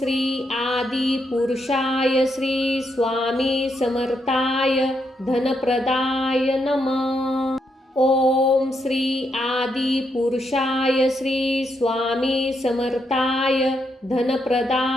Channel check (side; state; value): both; normal; correlation 0.79